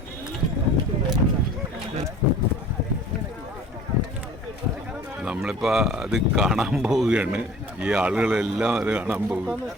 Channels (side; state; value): both; normal; correlation 0.46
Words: നമ്മളിപ്പോ അത് കാണാൻ പോവുകയാണ്. ഈ ആളുകളെല്ലാം അത് കാണാൻ പോകും.